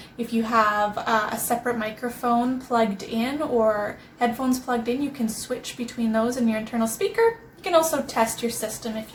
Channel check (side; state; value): both; identical; correlation 1.00